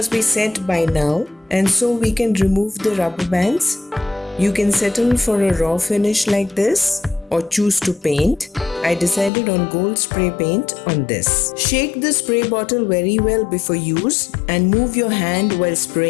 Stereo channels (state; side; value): drops out; right; at 9.3 s